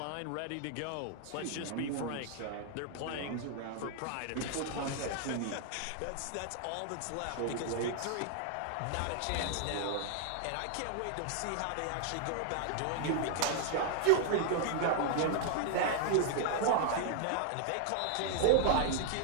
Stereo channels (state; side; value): different; both; correlation -0.01